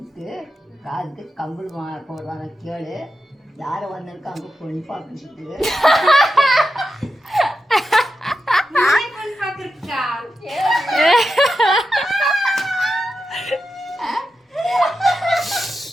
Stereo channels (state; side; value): normal; both; correlation 0.89